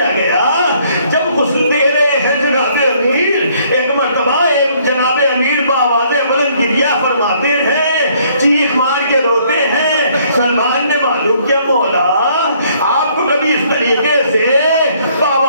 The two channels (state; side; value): inverted; both; correlation -0.64